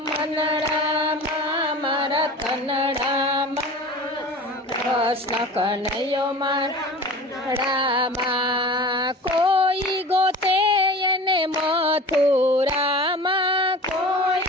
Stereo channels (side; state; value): both; normal; correlation 0.37